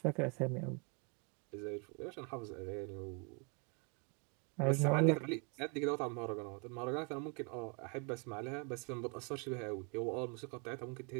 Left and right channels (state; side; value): quieter; left; 34.9 dB